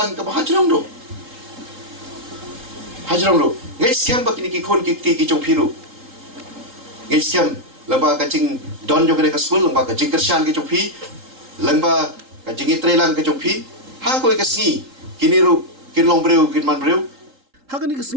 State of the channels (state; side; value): late; left; 3.8 ms